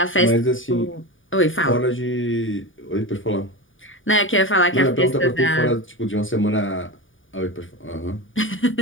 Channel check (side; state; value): right; late; 0.57 ms